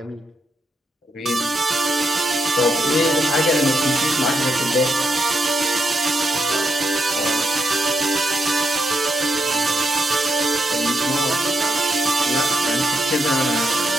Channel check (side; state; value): both; normal; correlation 0.81